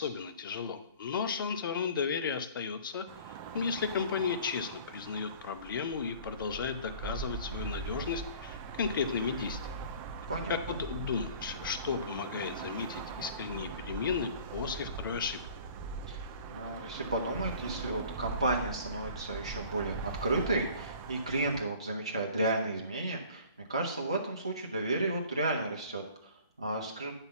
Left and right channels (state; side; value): inverted; both; correlation -0.48